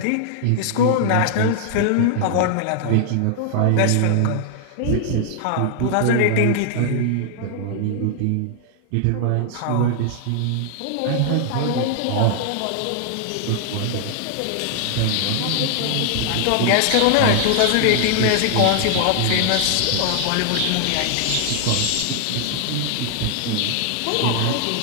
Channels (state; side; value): different; both; correlation 0.00